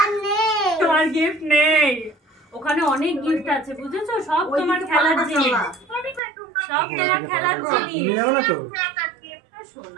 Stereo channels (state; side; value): drops out; left; at 6.2 s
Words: নেই। তোমার গিফট নেই। তোমার খেলার জিনিস, সব তোমার খেলার জিনিস। তুমি যাও না তো?